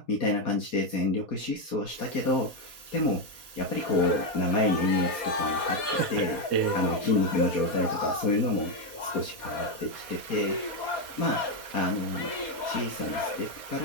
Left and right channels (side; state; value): right; late; 4.2 ms